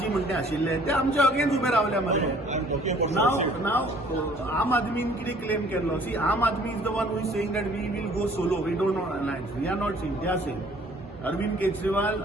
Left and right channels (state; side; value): normal; both; correlation 0.56